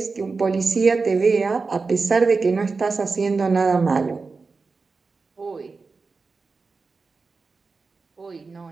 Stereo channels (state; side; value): quieter; left; 4.3 dB